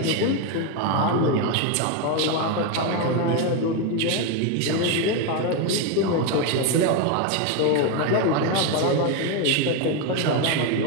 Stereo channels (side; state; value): both; different; correlation 0.02